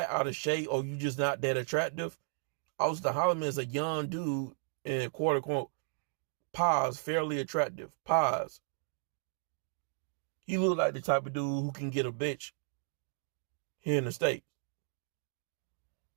out of shape, or you just not that attractive. Austin Holloman is a young dude and quote unquote pause, fairly attractive. Pause. He look like the type of dude who can get a bitch here in the States.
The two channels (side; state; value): left; silent; digital silence